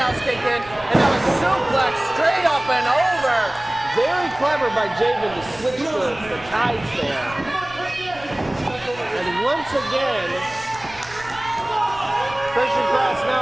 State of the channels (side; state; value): right; noise; rumble, 21 dB below the sound